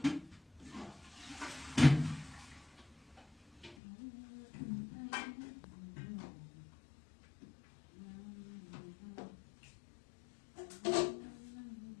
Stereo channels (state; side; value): drops out; right; at 3.8 s